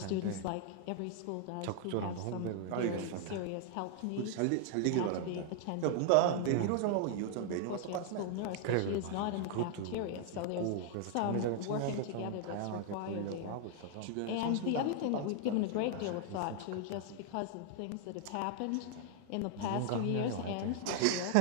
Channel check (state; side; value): different; both; correlation 0.00